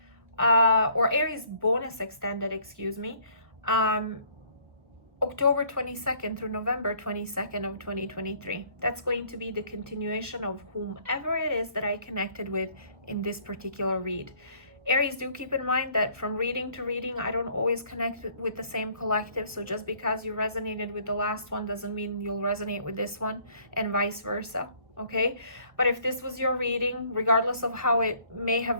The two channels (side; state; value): left; late; 1.0 ms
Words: or Aries bonus extended, excuse me, October 22nd through November 22nd of 2023. That's going to be the continuation of whomever it is that I connected with in this particular read. Aries, do keep in mind that from reading to reading, I don't always connect with the same collective. So just because you resonated with the last one doesn't mean you'll resonate with this one, and vice versa. Okay, but if this was your reading, regardless of how it may have